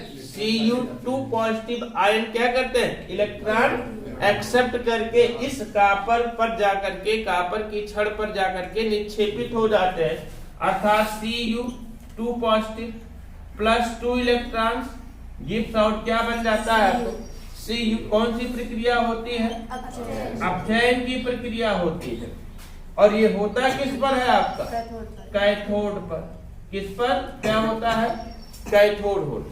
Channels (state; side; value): identical; both; correlation 1.00